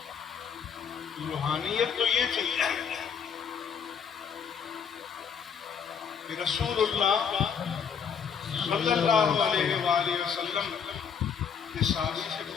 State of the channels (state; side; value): quieter; right; 7.0 dB